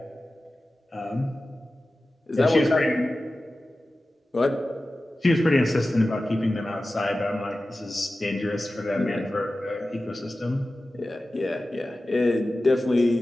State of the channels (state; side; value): normal; both; correlation 0.95